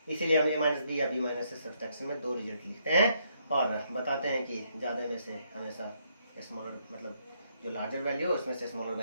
इसीलिए हम a - b या b - से सब्सट्रैक्शन में दो रिजल्ट लिखते हैं, और बताते हैं कि ज्यादा में से हमेशा स्मॉलर, मतलब जो लार्जर वैल्यू है उसमें से स्मॉलर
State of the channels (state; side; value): inverted; both; correlation -0.73